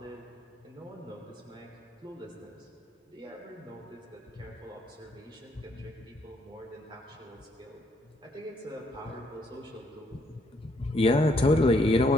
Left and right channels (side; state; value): both; normal; correlation 0.71